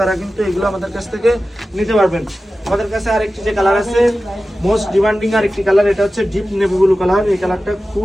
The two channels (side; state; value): both; normal; correlation 0.95